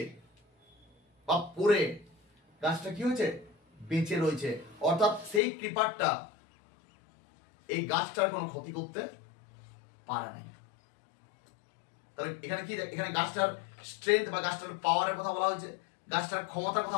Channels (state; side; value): drops out; right; at 5.4 s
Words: বা পরে গাছটা কি হয়েছে, বেঁচে রয়েছে। অর্থাৎ সেই ক্রিপারটা এই গাছটার কোনো ক্ষতি করতে পারে নাই। তাহলে এখানে কি, এখানে গাছটার স্ট্রেংথ বা গাছটার পাওয়ারের কথা বলা হয়েছে, গাছটার ক্ষমতার